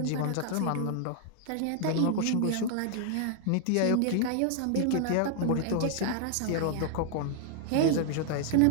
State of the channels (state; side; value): different; both; correlation 0.00